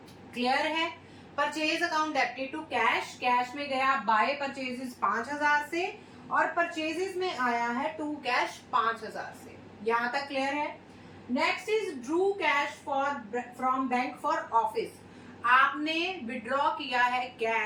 क्लियर है? Purchase account debited to cash, cash में गया बाय परचेजेस 5,000 से और परचेजेस में आया है टू कैश 5,000 से। यहां तक क्लियर है? Next is Drew cash for from bank for office. आपने विड्रॉ किया है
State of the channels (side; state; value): both; identical; correlation 1.00